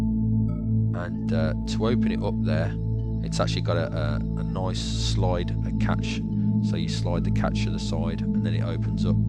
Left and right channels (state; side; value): identical; both; correlation 1.00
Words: And to open it up there, it's actually got a nice slide, a catch. So you slide the catch to the side and then it opens up.